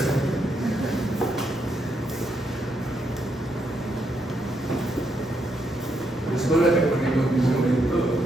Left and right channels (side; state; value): both; normal; correlation 0.79